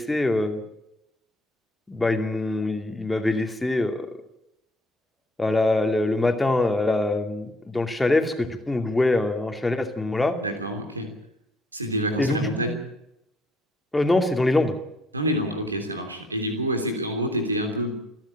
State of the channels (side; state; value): both; normal; correlation 0.66